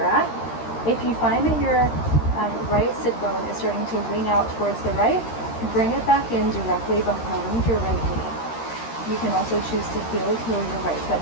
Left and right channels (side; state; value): right; late; 13 ms